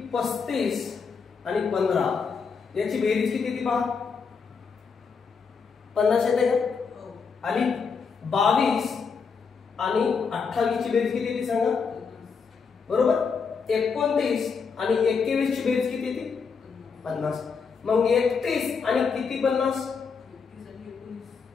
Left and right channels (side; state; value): right; quieter; 5.6 dB